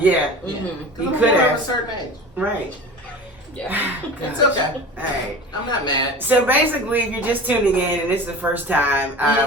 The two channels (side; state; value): both; normal; correlation 0.36